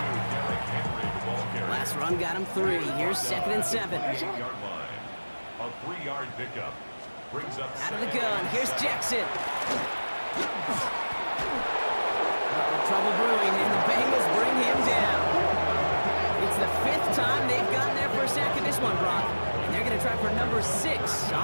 Last run got him 3. Here's 2nd and 7. 8-yard line. A 3-yard pickup. Brings up out of the gun. Here's Jackson. Trouble brewing, and the Bengals bring him down. this one, Brock. And they're going to try for number 6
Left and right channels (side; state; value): both; inverted; correlation -1.00